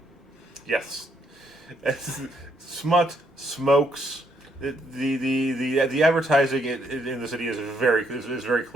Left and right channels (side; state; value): both; normal; correlation 0.73